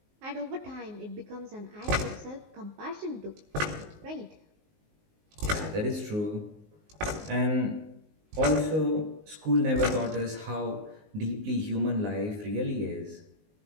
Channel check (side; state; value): left; late; 19 ms